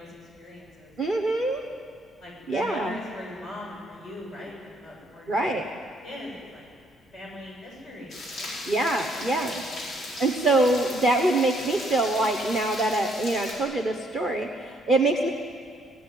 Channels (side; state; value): both; normal; correlation 0.68